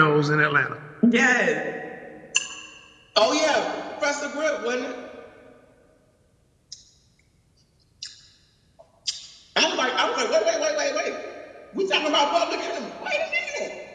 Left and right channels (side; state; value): both; identical; correlation 1.00